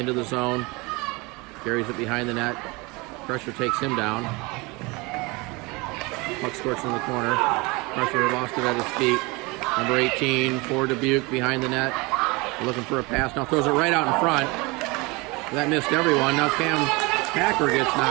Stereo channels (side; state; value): left; quieter; 25.7 dB